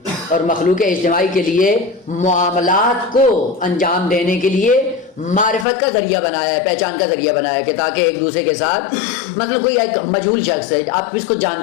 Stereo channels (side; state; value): right; drops out; at 5.7 s